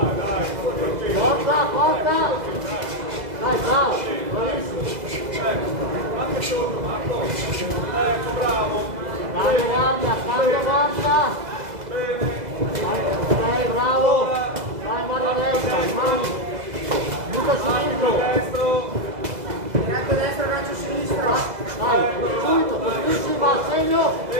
Forza! Dai, bravo! Bravissimo! Anche sotto, Marco. Ecco, bravo. Cambia guardia! Bene. Dai, bravo! Vai, guardia destra, rimani! Butta sinistro! Destro. Ghiaccio destra, ghiaccio sinistro! Dai, subito, così va a segno!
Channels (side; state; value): left; late; 2.0 ms